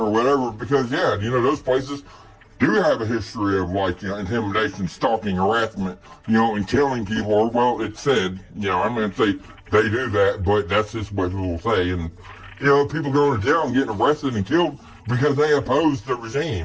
whatever, because, those places do have a history of, intimidation, stalking, harassment, and killing people, or, well, it's said, I'm going to say they do that, but that's just what people say, and, people going to jail and getting arrested and killed because they oppose the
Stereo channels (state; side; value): identical; both; correlation 1.00